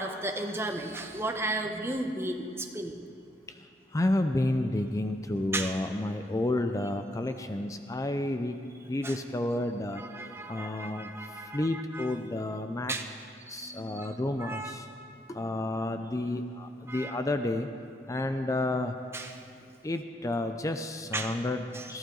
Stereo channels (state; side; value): normal; both; correlation 0.74